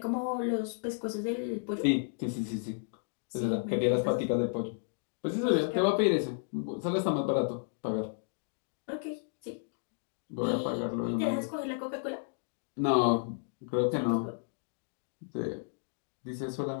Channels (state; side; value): silent; right; digital silence